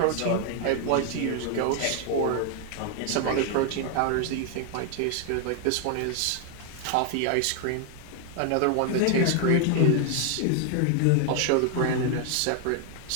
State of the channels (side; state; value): both; different; correlation 0.00